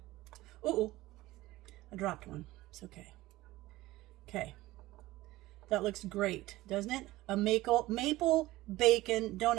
Uh-oh. I dropped one. It's okay. Okay. That looks great, doesn't it? A maple bacon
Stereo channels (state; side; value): quieter; left; 17.8 dB